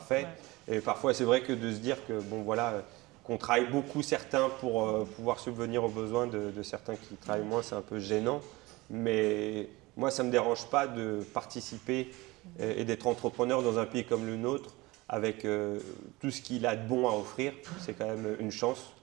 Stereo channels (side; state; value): left; quieter; 21.7 dB